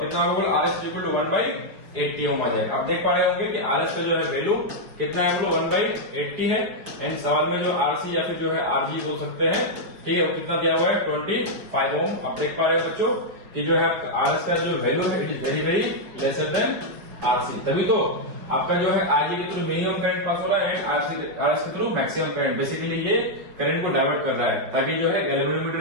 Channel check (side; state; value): left; late; 5.3 ms